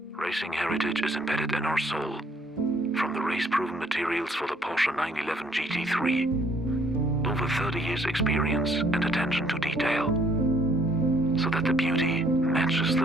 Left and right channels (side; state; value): both; normal; correlation 0.64